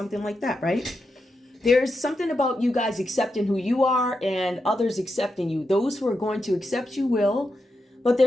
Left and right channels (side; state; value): both; normal; correlation 0.86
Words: like that, right? There's something about you guys accepting who you are and others accepting you. Those who are going to accept you will, but